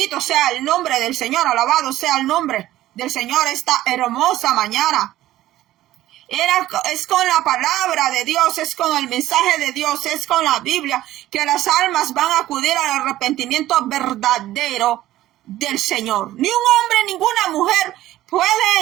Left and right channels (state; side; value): quieter; left; 14.7 dB